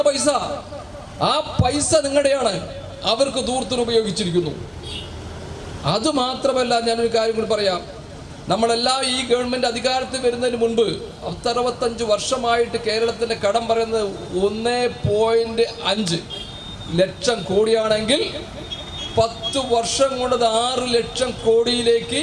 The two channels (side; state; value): both; identical; correlation 1.00